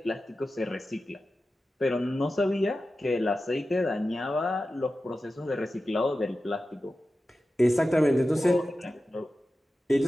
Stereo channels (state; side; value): normal; both; correlation 0.93